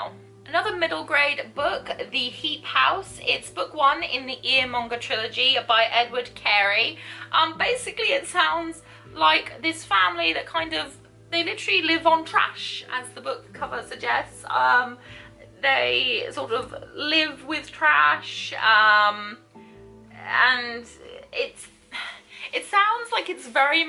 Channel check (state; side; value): identical; both; correlation 1.00